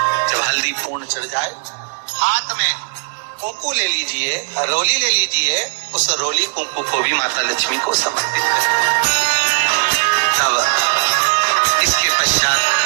जब हल्दी पूर्ण चढ़ जाए, हाथ में कुंकू ले लीजिए, रोली ले लीजिए, उस रोली कुंकू को भी माता लक्ष्मी को समर्पित करें। तब इसके पश्चात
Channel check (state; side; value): silent; left; digital silence